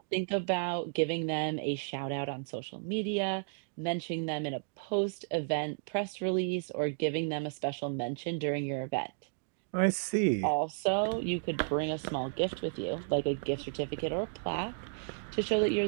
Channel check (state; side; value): silent; left; digital silence